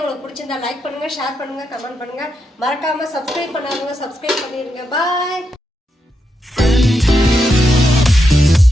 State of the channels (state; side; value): normal; both; correlation 0.84